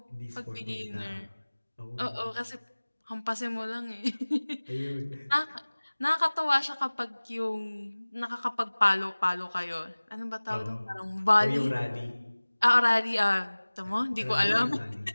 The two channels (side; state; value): both; inverted; correlation -1.00